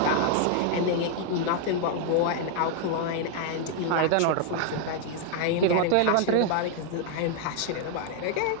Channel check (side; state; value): both; different; correlation 0.00